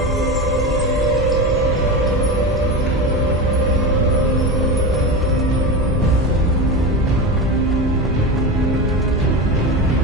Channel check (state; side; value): normal; both; correlation 0.22